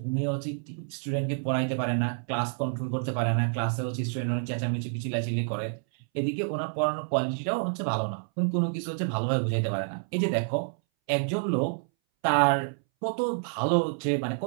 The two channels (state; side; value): silent; left; 59 dB below the other